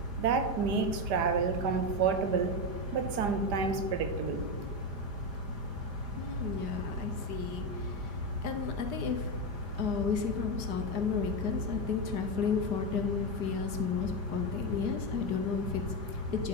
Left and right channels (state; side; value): late; left; 5.0 ms